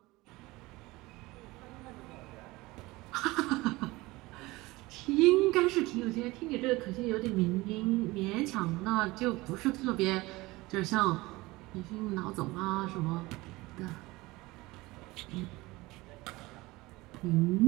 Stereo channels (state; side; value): quieter; left; 20.9 dB